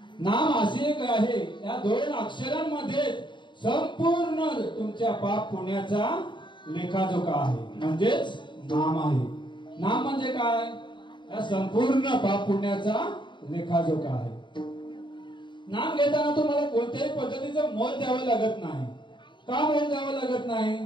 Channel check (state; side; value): late; right; 0.23 ms